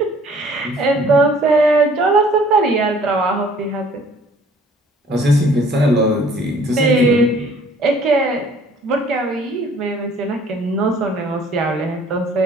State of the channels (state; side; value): normal; both; correlation 0.56